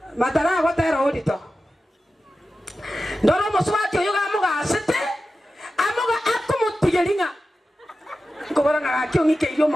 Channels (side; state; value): both; normal; correlation 0.93